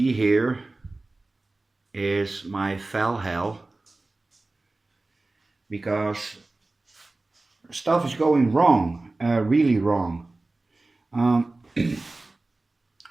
here is my fell hell because stuff is going wrong, really wrong. Um,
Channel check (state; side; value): quieter; left; 3.1 dB